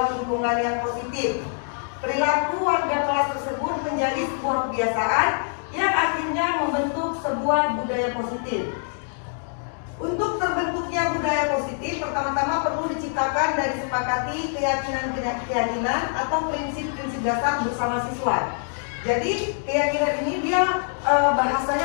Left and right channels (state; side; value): silent; right; 62 dB below the other